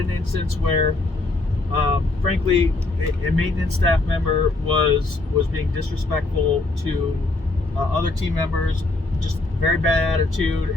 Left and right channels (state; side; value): quieter; right; 3.1 dB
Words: instance where frankly a maintenance staff member was being disrespectful to other team members, just very bad attitude,